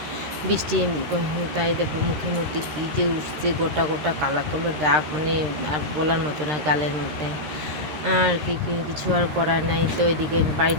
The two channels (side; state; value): left; late; 13 ms